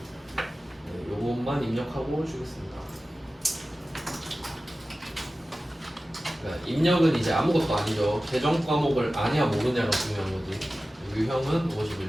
네, 요것만 입력하고 주겠습니다. 그러니까 입력은 이제 아무것도 아니죠. 계정 과목을 아냐 모르냐가 중요한 거지. 유형은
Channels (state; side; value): normal; both; correlation 0.95